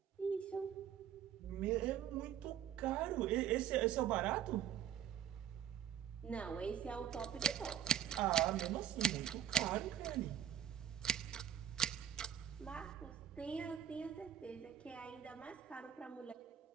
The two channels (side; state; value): left; quieter; 10.0 dB